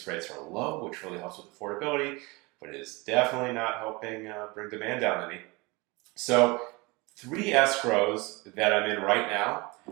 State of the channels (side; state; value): left; quieter; 25.4 dB